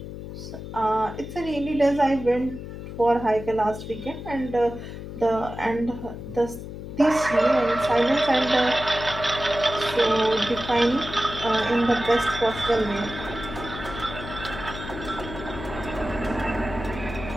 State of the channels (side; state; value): left; noise; hum, 10 dB below the sound